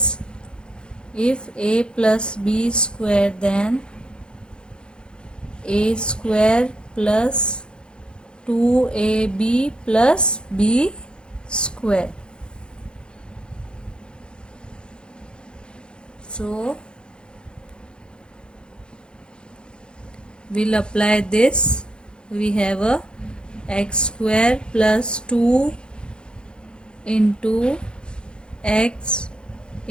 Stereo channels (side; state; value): right; late; 0.050 ms